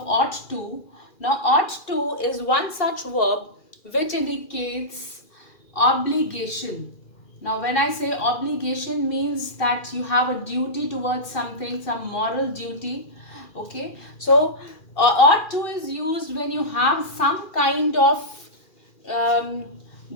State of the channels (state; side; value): late; right; 2.4 ms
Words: ought to. Now, ought to is one such verb which indicates obligation. Now, when I say obligation, means that you have a duty towards something, some moral duty. Okay, so ought to is used when you have some kind of